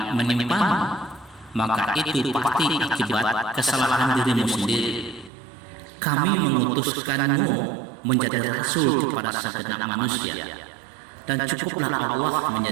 menimpamu, maka itu pasti akibat kesalahan dirimu sendiri. Kami mengutuskanmu menjadi rasul kepada segenap manusia, dan cukuplah Allah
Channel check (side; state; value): left; drops out; at 5.3 s